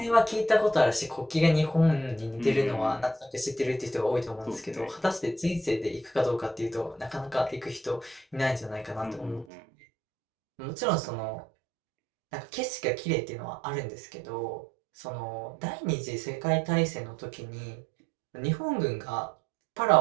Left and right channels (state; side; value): drops out; left; at 9.5 s